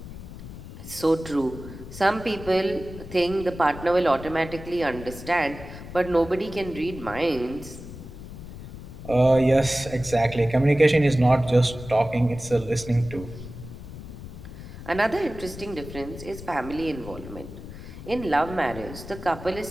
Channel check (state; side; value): noise; left; rumble, 13 dB below the sound